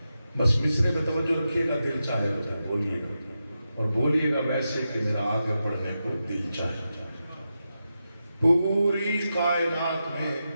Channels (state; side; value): inverted; both; correlation -0.89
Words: بس مصرے میں توجہ رکھیے گا، دل چاہے تو بولیے گا، اور بولیے گا ویسے کہ میرا آگے پڑھنے کو دل چاہے۔ پوری کائنات میں